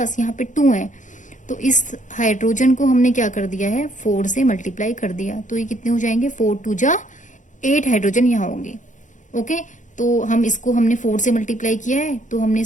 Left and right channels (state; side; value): late; right; 0.36 ms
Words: यहाँ पे 2 है। तो इस हाइड्रोजन को हमने क्या कर दिया है 4 से मल्टीप्लाई कर दिया। तो ये कितने हो जाएंगे 4 2 जा 8 हाइड्रोजन यहाँ होंगे। ओके, तो हम इसको हमने 4 से मल्टीप्लाई किया है, तो हमने